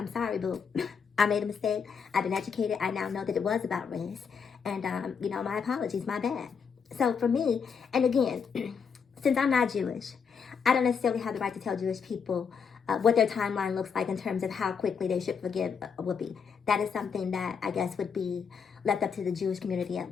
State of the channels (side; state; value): right; quieter; 6.3 dB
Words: sorry, boo. I made a mistake. I've been educated. I now know that it was about race. And, you know, my apologies, my bad. So for me, and again, since I'm not Jewish, I don't necessarily have the right to tell Jewish people what their timeline looks like in terms of how quickly they should forgive Whoopi. That is something that I guess would be left up to the Jewish community at